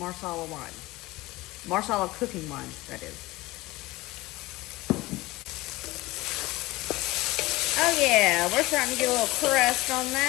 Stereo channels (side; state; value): right; quieter; 20.0 dB